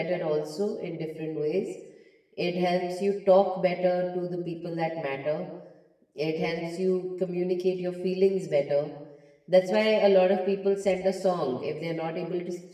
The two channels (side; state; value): both; identical; correlation 1.00